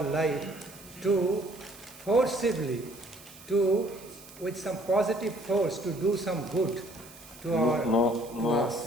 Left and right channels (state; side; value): noise; right; hiss, 20 dB below the sound